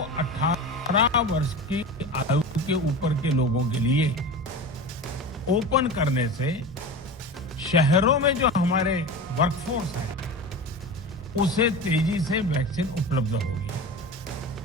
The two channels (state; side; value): normal; both; correlation 0.30